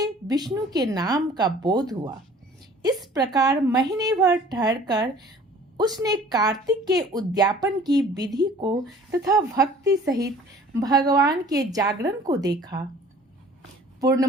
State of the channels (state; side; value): normal; both; correlation 0.50